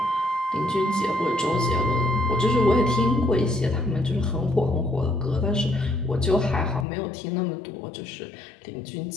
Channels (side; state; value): right; drops out; at 6.9 s